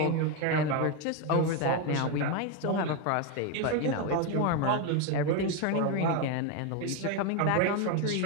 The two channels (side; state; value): both; different; correlation 0.02